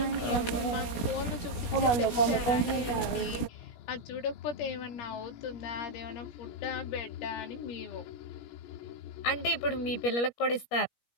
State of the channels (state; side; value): late; right; 16 ms